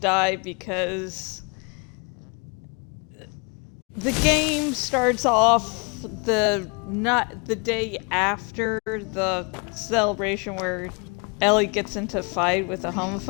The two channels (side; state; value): right; quieter; 32.5 dB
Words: because the game starts off not the day after the celebration where Ellie gets into a fight with a